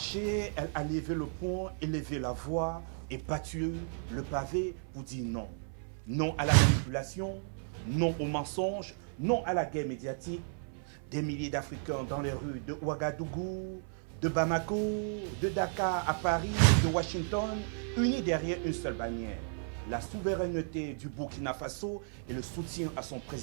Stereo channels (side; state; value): left; silent; 55 dB below the other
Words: elle a levé le poing, élevé la voix et battu le pavé pour dire non. Non à la manipulation, non au mensonge, non à la guerre médiatique. Des milliers d'Africains dans les rues de Ouagadougou, de Bamako, de Dakar à Paris, de Washington, unis derrière une seule bannière. La souveraineté du Burkina Faso et le soutien à son